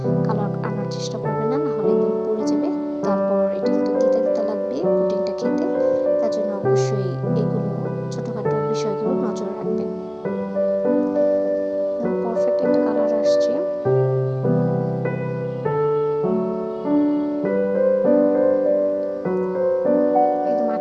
কালার আনার চেষ্টা করবেন না, নাহলে একদম পুড়ে যাবে। তারপর এটা কিন্তু তিতা তিতা লাগবে পুডিংটা খেতে, তার জন্য অবশ্যই এগুলো ছোটোখাটো বিষয়গুলো নজরে রাখবেন। পারফেক্ট একটা কালার আসছে। একদম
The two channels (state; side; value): identical; both; correlation 1.00